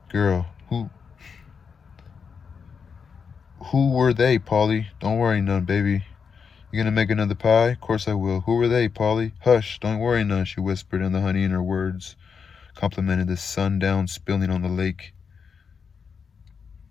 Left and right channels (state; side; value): quieter; right; 6.1 dB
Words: girl. Who were they, Polly?" "Don't worry none, baby. You gonna make another pie?" "Course I will." "Who were they, Polly?" "Hush, don't worry none," she whispered, and the honey in her words complemented the sundown spilling on the lake.